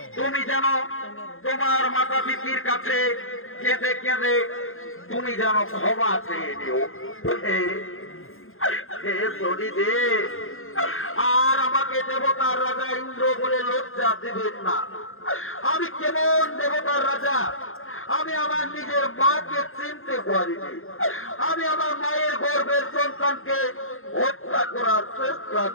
তুমি যেন তোমার মাতা পিতার কাছে কেঁদে কেঁদে তুমি যেন ক্ষমা চেয়ে নিও। আর আমাকে দেবতার রাজা ইন্দ্র বলে লজ্জা দেবেন না। আমি কেমন দেবতার রাজা, আমি আমার নিজের মাকে চিনতে পারিনি, আমি আমার মায়ের গর্ভের সন্তানকে হত্যা করার চেষ্টা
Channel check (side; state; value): right; late; 0.60 ms